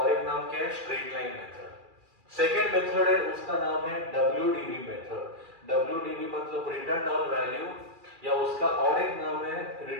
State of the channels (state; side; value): late; left; 2.4 ms